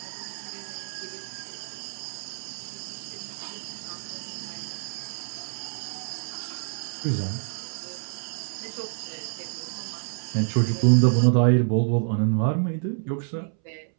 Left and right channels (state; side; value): silent; left; 60 dB below the other